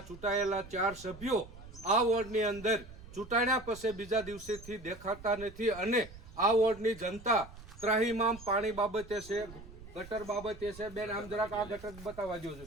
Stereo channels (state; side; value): noise; right; rumble, 17 dB below the sound